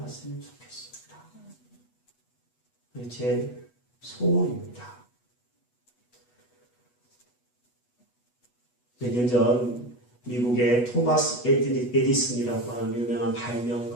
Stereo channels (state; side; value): late; right; 8.2 ms